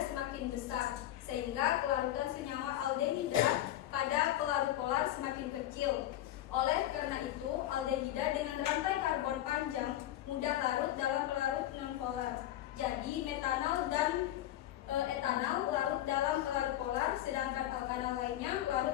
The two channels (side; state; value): right; quieter; 13.5 dB